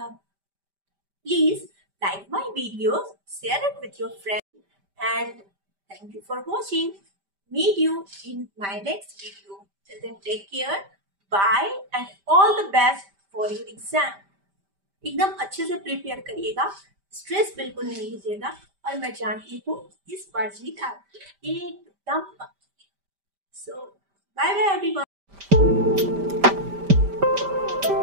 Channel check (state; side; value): late; left; 5.1 ms